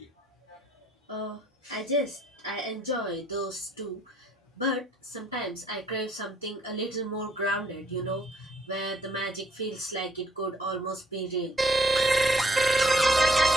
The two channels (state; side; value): normal; both; correlation 0.65